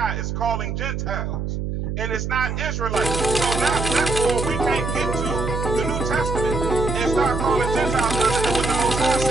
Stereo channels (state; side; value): noise; right; hum, 3 dB below the sound